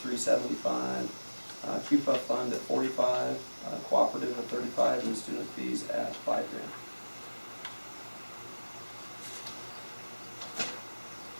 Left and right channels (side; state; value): both; inverted; correlation -1.00